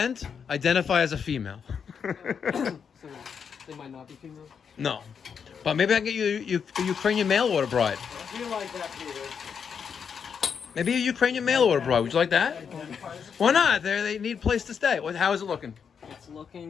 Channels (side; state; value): right; quieter; 6.8 dB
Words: identify as a female. So they might not be female. No. But maybe I can get you a Ukrainian mail order bride. I do like that, Peter. Maybe a Ukrainian mail order bride. Would you like that? Why not? They need a place to stay. How is it looking? It's